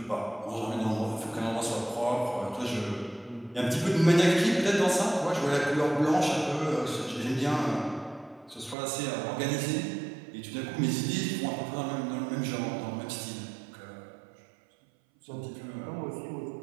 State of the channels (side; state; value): left; drops out; at 8.8 s